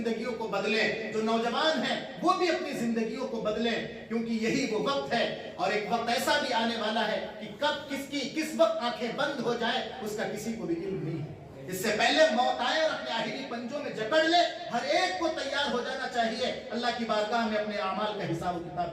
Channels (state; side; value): identical; both; correlation 1.00